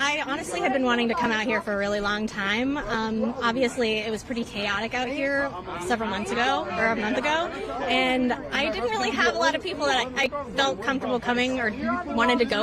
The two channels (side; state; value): both; identical; correlation 1.00